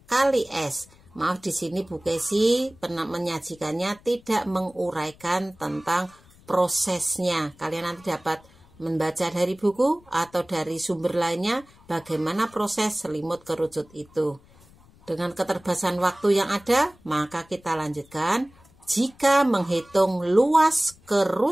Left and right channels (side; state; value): left; noise; rumble, 27 dB below the sound